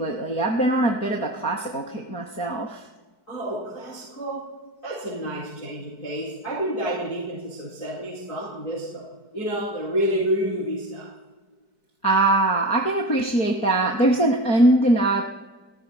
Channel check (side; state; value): right; late; 4.6 ms